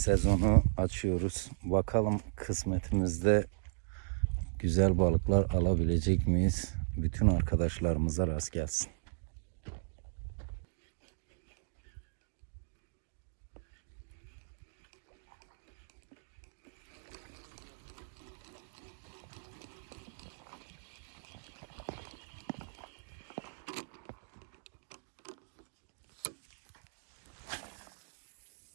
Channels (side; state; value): left; silent; digital silence